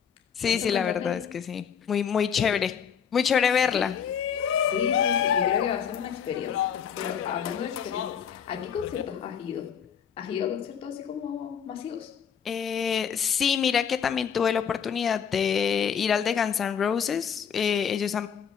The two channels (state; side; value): quieter; right; 7.6 dB